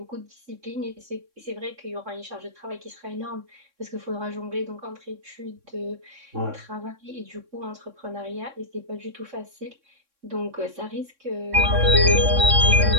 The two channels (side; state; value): left; late; 3.6 ms